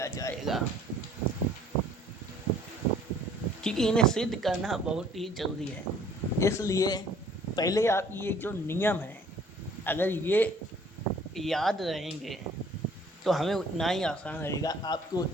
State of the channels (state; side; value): normal; both; correlation 0.56